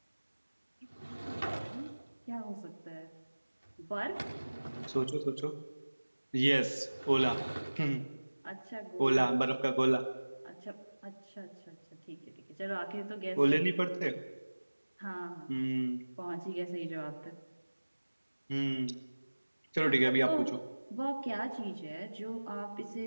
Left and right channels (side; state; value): both; inverted; correlation -1.00